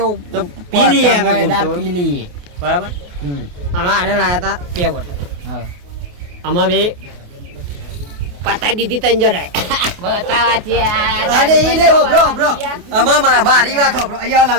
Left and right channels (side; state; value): left; late; 28 ms